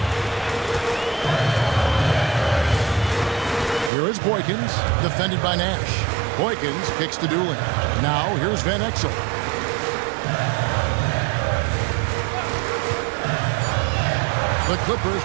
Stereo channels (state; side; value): drops out; left; at 3.9 s